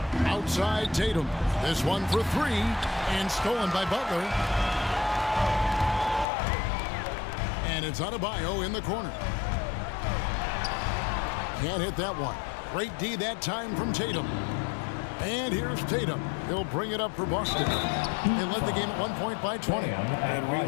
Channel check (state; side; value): drops out; right; at 6.2 s